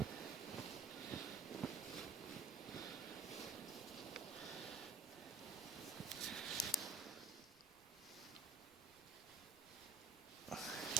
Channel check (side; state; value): left; quieter; 4.2 dB